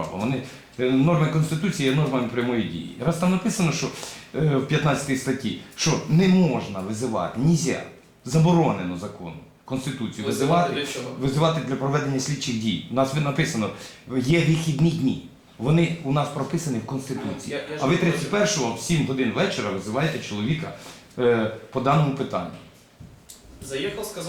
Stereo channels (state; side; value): identical; both; correlation 1.00